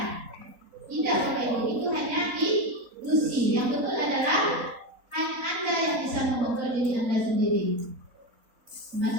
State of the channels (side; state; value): left; late; 4.0 ms